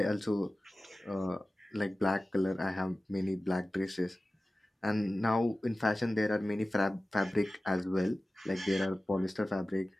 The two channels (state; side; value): normal; both; correlation 0.96